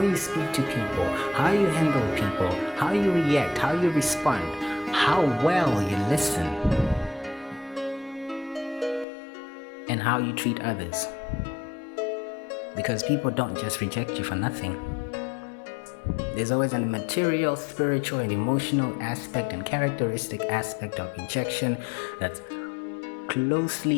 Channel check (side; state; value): right; drops out; at 9.1 s